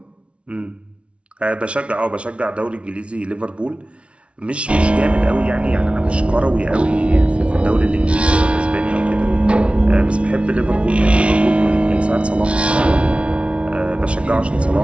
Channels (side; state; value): left; late; 0.060 ms